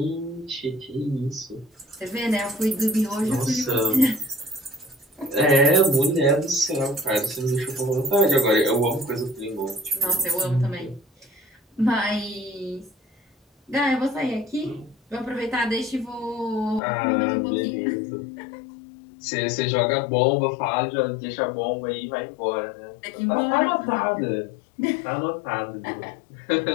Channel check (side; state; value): right; drops out; at 16.8 s